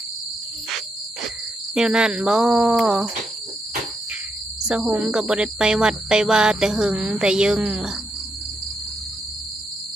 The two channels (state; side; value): normal; both; correlation 0.81